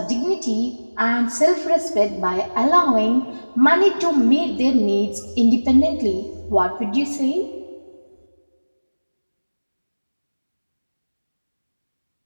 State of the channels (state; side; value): inverted; both; correlation -1.00